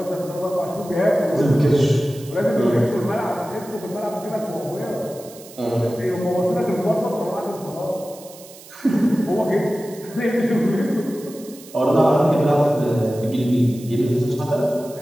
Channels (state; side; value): noise; right; hiss, 19 dB below the sound